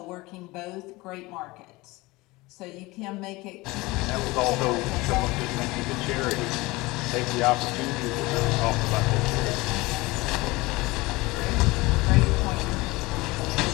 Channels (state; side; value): quieter; right; 21.9 dB